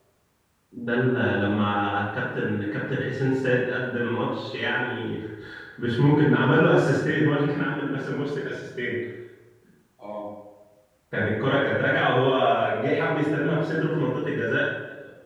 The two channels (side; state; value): both; identical; correlation 1.00